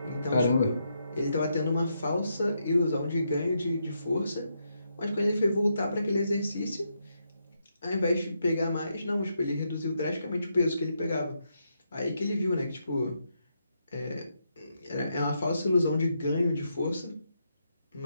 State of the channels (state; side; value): inverted; both; correlation -0.80